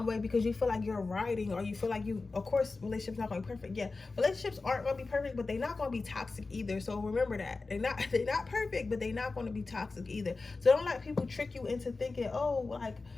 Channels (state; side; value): quieter; right; 3.8 dB